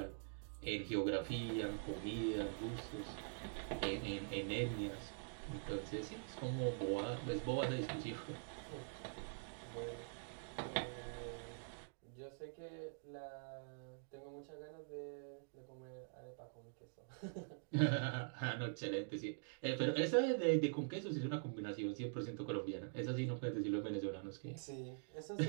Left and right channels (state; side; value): silent; left; digital silence